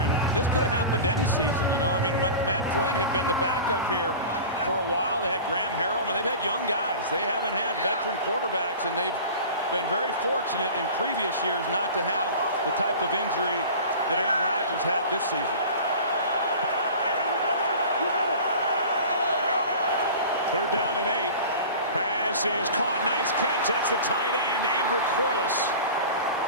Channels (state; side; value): inverted; both; correlation -0.37